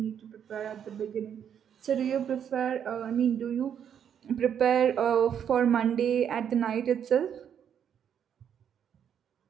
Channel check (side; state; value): left; quieter; 8.6 dB